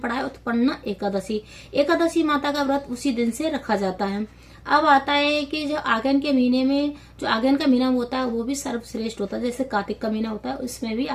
है उत्पन्न एकादशी। एकादशी माता का व्रत उसी दिन से रखा जाता है। अब आता है कि जो आगन के महीने में, जो आगन का महीना होता है वो भी सर्वश्रेष्ठ होता है। जैसे कार्तिक का महीना होता है, उसमें भी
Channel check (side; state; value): both; identical; correlation 1.00